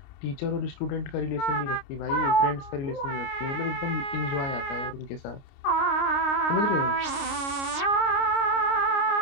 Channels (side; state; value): right; late; 29 ms